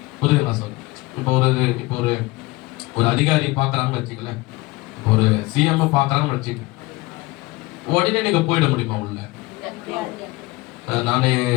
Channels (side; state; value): right; quieter; 22.0 dB